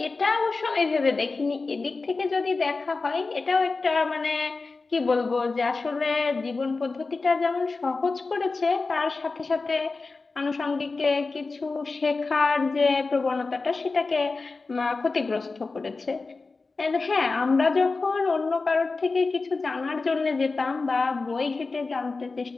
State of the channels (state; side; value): quieter; right; 3.9 dB